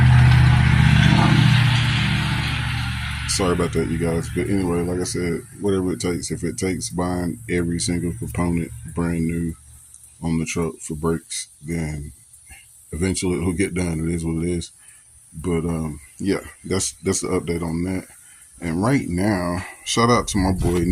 Sorry about that, you guys. But anyway, like I said, whatever it takes. If it takes buying every single component brand new on the truck for brakes, then eventually it'll get done. It is what it is. But yeah, that's the update on that. And right now, shout out to my boy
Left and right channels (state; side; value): identical; both; correlation 1.00